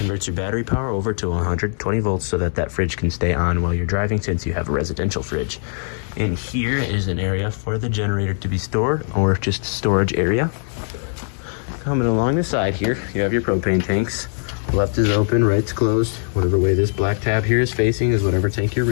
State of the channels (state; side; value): silent; right; 65 dB below the other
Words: your battery power over to 120 volts so that that fridge can stay on while you're driving, since you have a residential fridge. And here is an area for the generator to be stored, or just storage area. Coming along the side here, you have your propane tanks. Left is open, right's closed. Whatever way this black tab here is facing is whatever tank you're